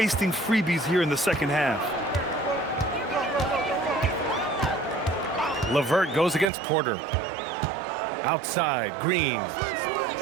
freebies here in the second half. LeVert goes against Porter. Outside, Green.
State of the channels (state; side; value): drops out; left; at 6.5 s